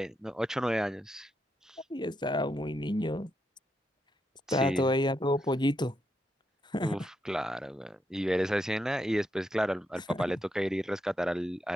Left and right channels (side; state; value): both; normal; correlation 0.82